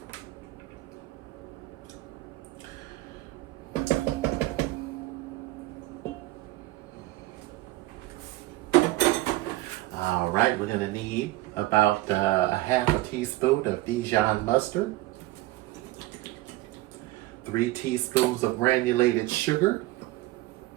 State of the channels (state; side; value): quieter; left; 18.2 dB